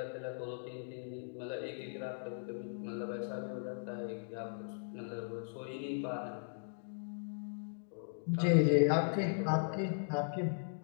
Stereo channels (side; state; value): right; silent; digital silence